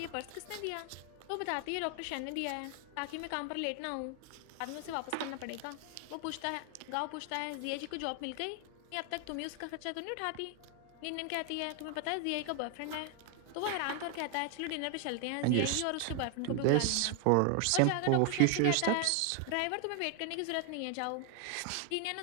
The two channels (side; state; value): both; different; correlation 0.00